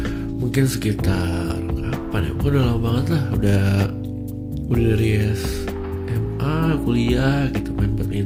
mungkin sekitar kapan ya, udah lama banget lah, udah dari SMA kuliah gitu main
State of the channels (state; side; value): identical; both; correlation 1.00